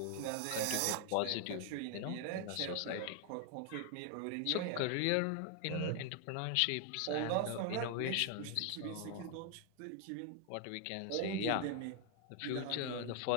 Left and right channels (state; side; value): different; both; correlation 0.00